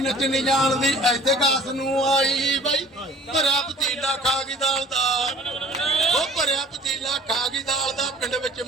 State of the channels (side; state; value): both; normal; correlation 0.49